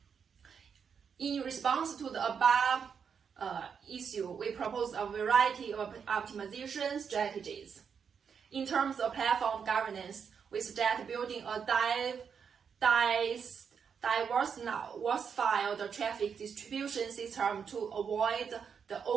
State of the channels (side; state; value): left; quieter; 6.7 dB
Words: In response to the above issue, we propose a variety of optimization strategies. In terms of platform governance, we suggest building a diversified traffic distribution system to avoid the